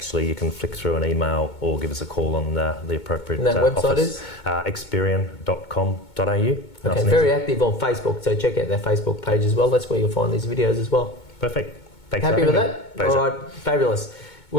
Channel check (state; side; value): late; right; 2.2 ms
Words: you can flick through an email or give us a call on the appropriate office. And that website is? Experian.com.au. Okay, very active on Facebook, so check out their Facebook page as well. That's where you'll find these videos as well. Perfect. Thanks Happy for with having that? me. Pleasure. All right, fabulous.